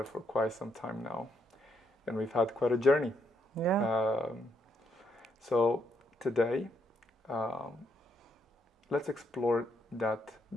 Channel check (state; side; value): normal; both; correlation 0.75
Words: for quite some time now, and we've had quite a journey. Yeah. So today, let's explore that